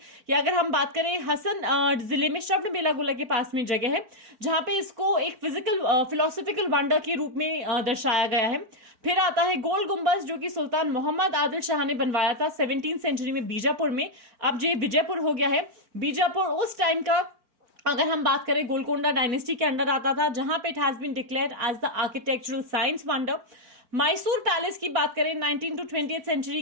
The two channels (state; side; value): late; left; 4.4 ms